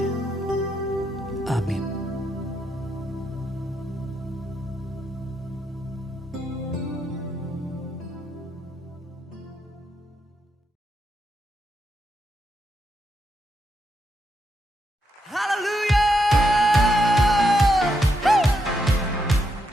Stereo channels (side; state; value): both; normal; correlation 0.81